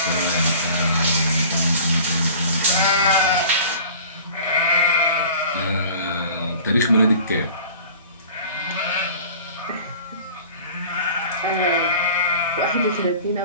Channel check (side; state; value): both; inverted; correlation -0.43